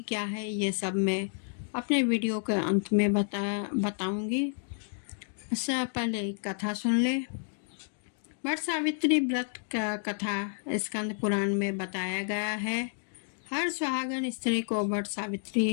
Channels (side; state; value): right; silent; digital silence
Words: क्या है, ये सब मैं अपने वीडियो के अंत में बताऊंगी। इससे पहले एक कथा सुन ले। वट सावित्री व्रत का कथा स्कंद पुराण में बताया गया है। हर सुहागन स्त्री को वट